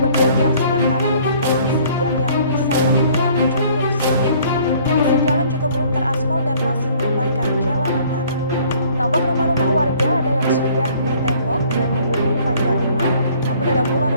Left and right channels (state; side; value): inverted; both; correlation -0.57